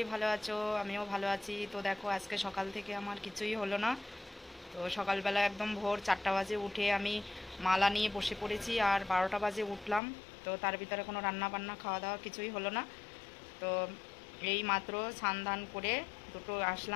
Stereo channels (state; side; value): drops out; right; at 10.0 s